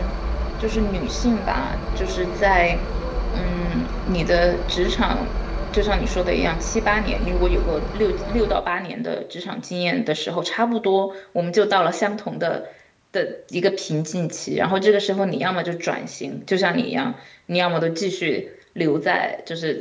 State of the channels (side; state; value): both; identical; correlation 1.00